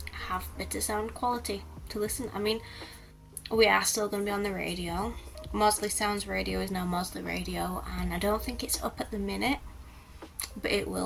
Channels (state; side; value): identical; both; correlation 1.00